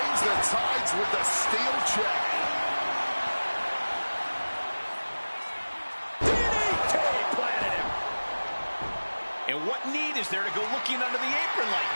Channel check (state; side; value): inverted; both; correlation -1.00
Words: the tides with the steel chair. And what need is there to go looking under the apron like